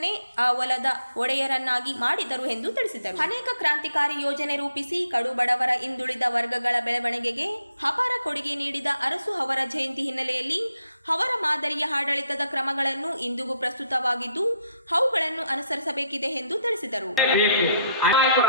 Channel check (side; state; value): both; inverted; correlation -0.74